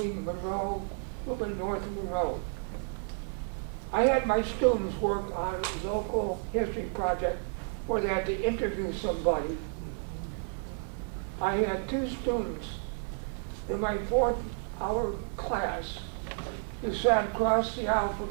Monroe, a little bit north of Monroe. I had my students work on a local history project where they had to interview somebody. I had two students in my 4th hour class who sat across the aisle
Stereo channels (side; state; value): left; silent; 57 dB below the other